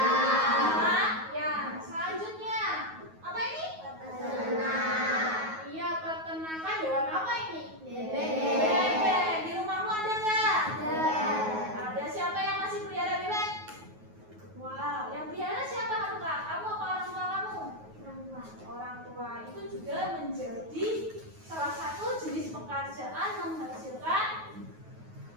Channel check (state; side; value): late; left; 9.4 ms